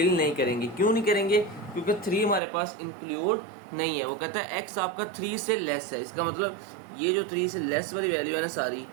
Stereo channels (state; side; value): drops out; left; at 2.4 s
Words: नहीं करेंगे। क्यों नहीं करेंगे? क्योंकि 3 हमारे पास इंक्लूड नहीं है। वो कहता है x आपका 3 से लेस है, इसका मतलब ये जो 3 से लेस वाली वैल्यू है ना सारी,